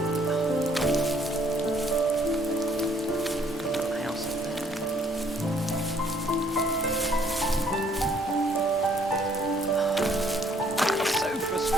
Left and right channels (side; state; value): both; normal; correlation 0.64